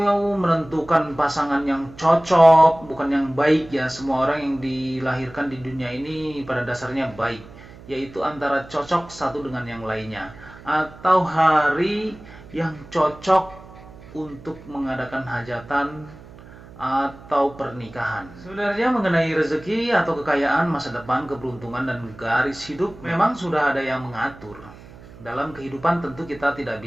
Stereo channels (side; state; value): right; noise; hum, 19 dB below the sound